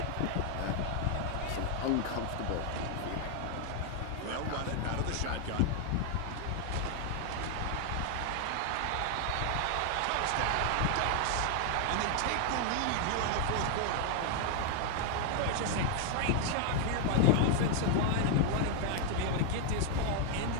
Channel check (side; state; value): both; different; correlation 0.00